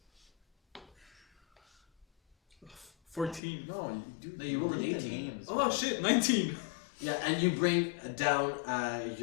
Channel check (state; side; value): drops out; right; at 3.4 s